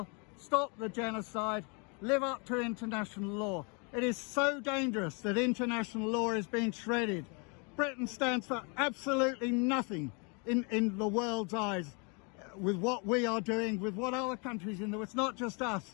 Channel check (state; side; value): quieter; right; 33.7 dB